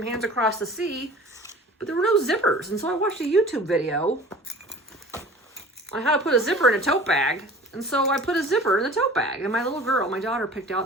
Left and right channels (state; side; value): normal; both; correlation 0.43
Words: Hands Across the Sea, but there were no zippers. And so I watched a YouTube video on how to put a zipper in a tote bag. And so I put a zipper in the tote bag. And my little girl, my daughter, picked